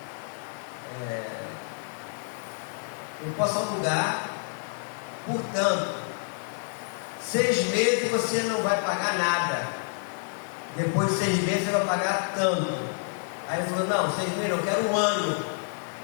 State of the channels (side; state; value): right; silent; digital silence